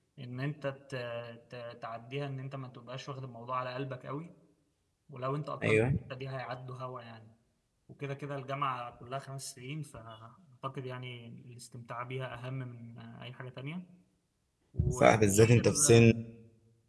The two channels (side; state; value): both; identical; correlation 1.00